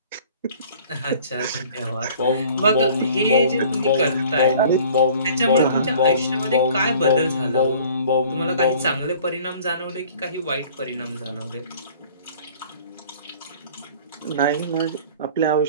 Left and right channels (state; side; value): inverted; both; correlation -0.50